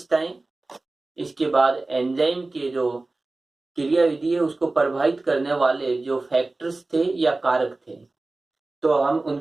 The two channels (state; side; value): quieter; left; 3.2 dB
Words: इसके बाद एंजाइम के जो क्रियाविधि है उसको प्रभावित करने वाले जो फैक्टर्स थे या कारक थे, तो हम